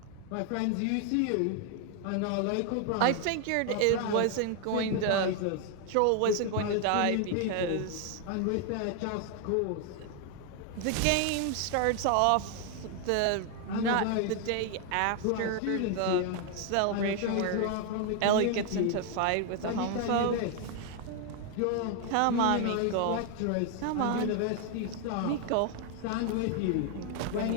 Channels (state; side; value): different; both; correlation 0.00